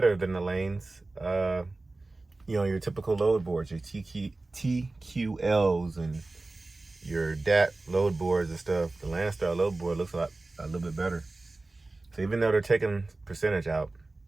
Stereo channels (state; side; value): quieter; left; 3.2 dB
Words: than the lanes, your typical load boards, your TQLs and your DAT load boards and stuff. The LoneStar load board looks a little bit better. So even though they're taking percentage out,